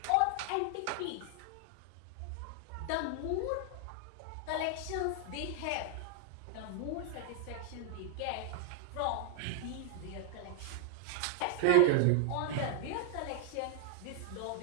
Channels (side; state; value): both; different; correlation 0.00